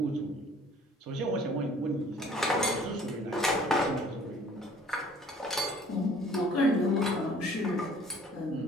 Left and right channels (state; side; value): normal; both; correlation 0.54